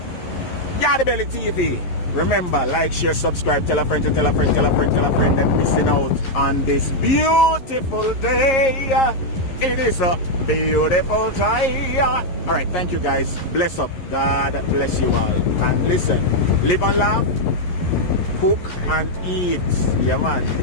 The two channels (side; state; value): right; late; 11 ms